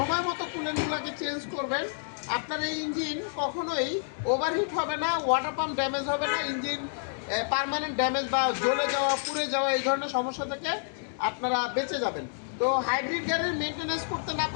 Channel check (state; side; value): silent; right; digital silence